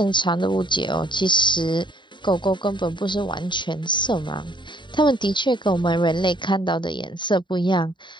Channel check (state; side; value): late; right; 0.23 ms